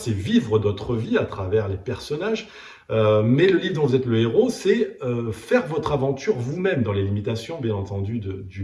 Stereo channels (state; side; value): identical; both; correlation 1.00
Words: vivre d'autres vies à travers les personnages. Mais le livre dont vous êtes le héros, c'est faire votre aventure vous-même, dans les limitations, bien entendu, du